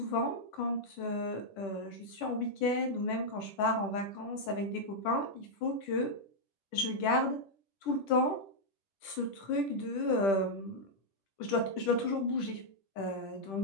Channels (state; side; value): late; right; 10 ms